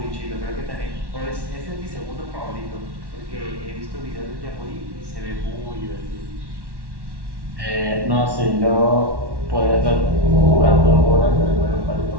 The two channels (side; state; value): left; late; 1.1 ms